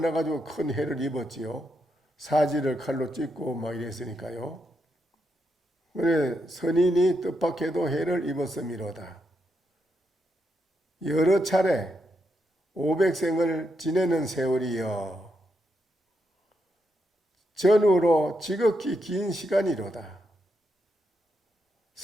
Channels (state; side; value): normal; both; correlation 0.82